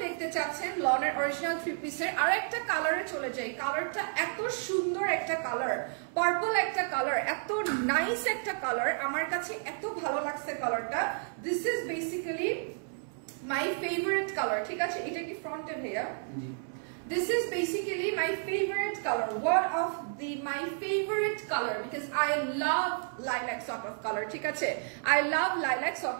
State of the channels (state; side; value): silent; left; 57 dB below the other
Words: দেখতে চাচ্ছেন লনের অরিজিনাল 3 পিসের, আরেকটা কালারে চলে যাই। কালারটা এত সুন্দর একটা কালার, পার্পল একটা কালার, এত নাইস একটা কালার, আমার কাছে এত ভালো লাগছে কালারটা। This is basically my favorite color, ঠিক আছে? এটা কি ফ্রন্টে ভাইয়া? This is basically my favorite color, one of my favorite color, because I love lilac sort of color, ঠিক আছে? I love lilac